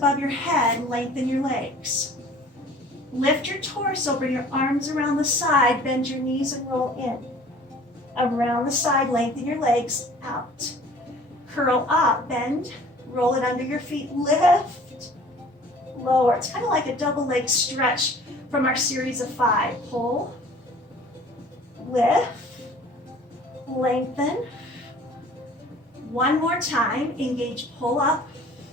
your head. Lengthen your legs. Lift your torso. Bring your arms around the side. Bend your knees and roll in. Around the side. Lengthen your legs. Out. Curl up. Bend. Roll it under your feet. Lift. Lower. It's kind of like a double leg stretch from our series of 5. Pull. Lift. Lengthen. One more time. Engage. Pull up.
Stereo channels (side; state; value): both; normal; correlation 0.49